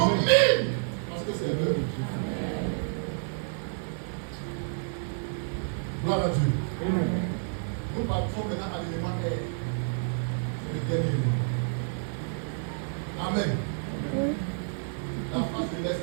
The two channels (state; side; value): silent; left; 58 dB below the other